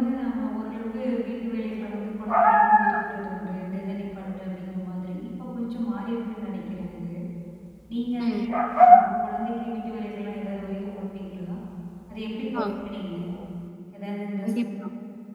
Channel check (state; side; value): identical; both; correlation 1.00